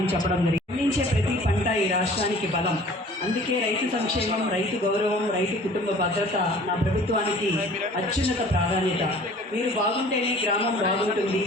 చెప్పడం జరిగింది. పండించే ప్రతి పంట ఈ రాష్ట్రానికి బలం. అందుకే రైతు సంక్షేమం, రైతు గౌరవం, రైతు కుటుంబ భద్రత నా ప్రభుత్వానికి అత్యున్నత ప్రాధాన్యత. మీరు బాగుంటేనే గ్రామం బాగుంటుంది,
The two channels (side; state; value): both; normal; correlation 0.49